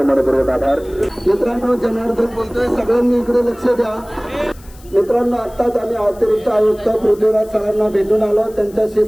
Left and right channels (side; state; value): left; noise; hiss, 25 dB below the sound